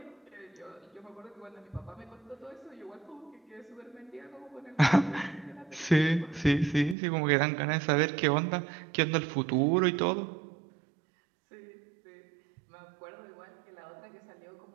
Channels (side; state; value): left; drops out; at 7.0 s